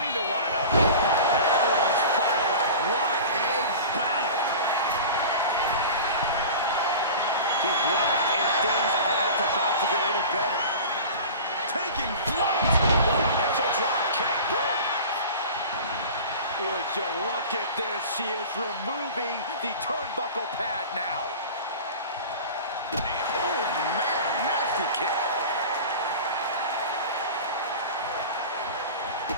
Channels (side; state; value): both; inverted; correlation -0.36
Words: to one another. Everyone's fired up. What a battle. She's locked and things aren't about to get any better. Taking flight. Missile drop kick. Would you look at this? She is removing the turnbuckle pad now. Oh man, nasty kick.